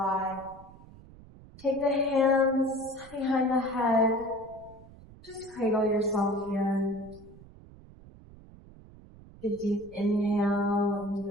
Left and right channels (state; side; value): noise; right; rumble, 21 dB below the sound